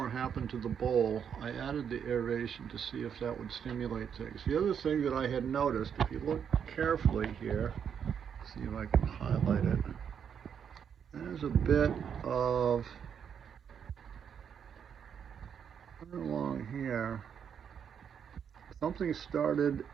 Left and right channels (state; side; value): quieter; left; 7.8 dB